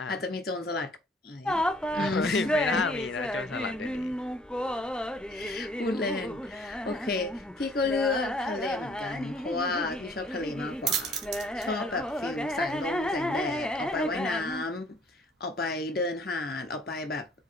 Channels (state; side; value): normal; both; correlation 0.57